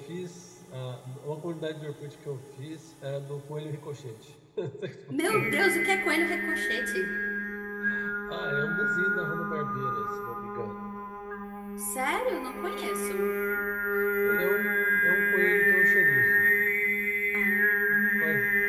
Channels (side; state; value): both; identical; correlation 1.00